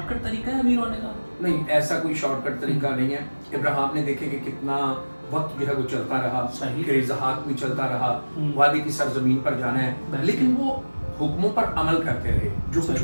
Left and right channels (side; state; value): both; inverted; correlation -1.00